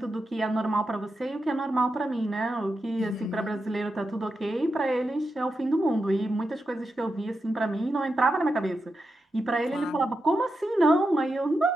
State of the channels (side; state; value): both; normal; correlation 0.88